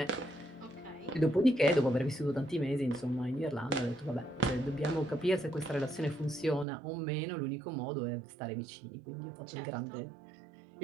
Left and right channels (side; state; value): left; drops out; at 6.7 s